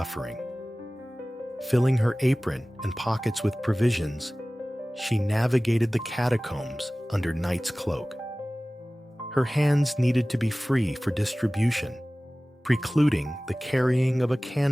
Filling her apron and pockets with provisions, she navigated the catacombs under night's cloak. Her hands needed to be free for distribution, precluding the carrying of a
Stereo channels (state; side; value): normal; both; correlation 0.98